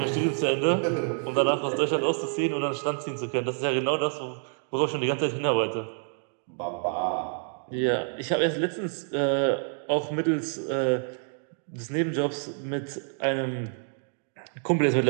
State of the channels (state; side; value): silent; left; 60 dB below the other